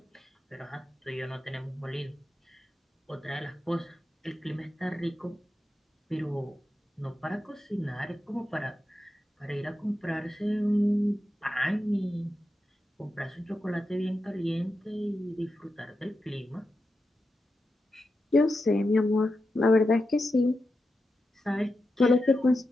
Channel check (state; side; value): normal; both; correlation 0.89